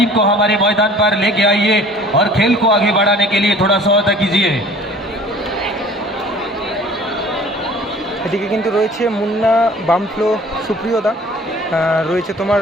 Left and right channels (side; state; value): both; normal; correlation 0.49